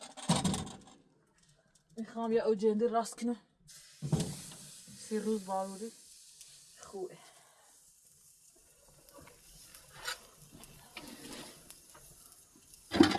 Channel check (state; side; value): identical; both; correlation 1.00